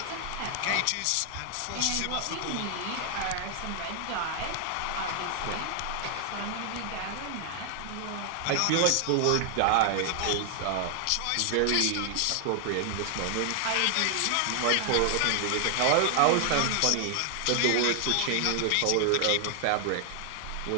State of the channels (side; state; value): both; different; correlation 0.00